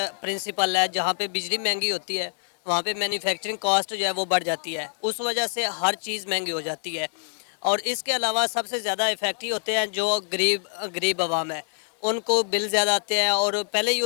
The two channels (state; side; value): silent; right; 56 dB below the other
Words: प्रिंसिपल है, जहाँ पे बिजली महंगी होती है वहाँ पे मैन्युफैक्चरिंग कॉस्ट जो है वो बढ़ जाती है, उस वजह से हर चीज़ महंगी हो जाती है। और इसके अलावा सबसे ज़्यादा इफेक्टिव होते हैं जो गरीब आवाम है, उनको बिल ज़्यादा आते हैं, और पहले ही